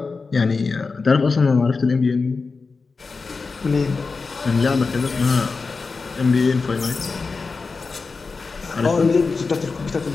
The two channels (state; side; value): quieter; right; 4.4 dB